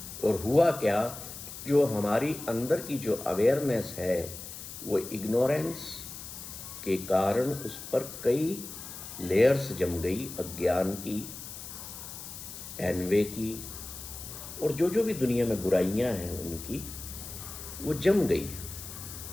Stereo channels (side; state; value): left; noise; hiss, 11 dB below the sound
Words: और हुआ क्या, जो हमारी अंदर की जो अवेयरनेस है वो इग्नोरेंस के कारण उस पर कई लेयर्स जम गई, अज्ञान की, एनवे की, और जो जो भी दुनिया में बुराइयां हैं उनकी, वो जम गई।